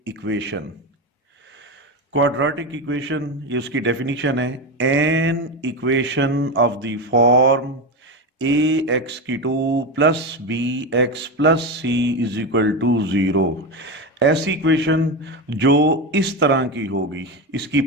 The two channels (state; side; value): normal; both; correlation 0.16